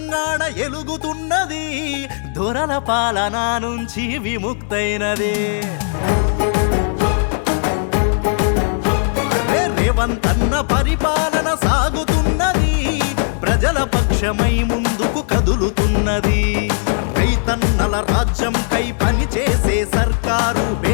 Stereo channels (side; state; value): right; silent; digital silence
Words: ఎలుగుతున్నది, దొరల పాలన నుంచి విముక్తైనది. రేవంత్ అన్న పరిపాలన సాగుతున్నది, ప్రజల పక్షమై ముందుకు కదులుతున్నది. రైతన్నల రాజ్యంకై పనిచేసే సర్కారు,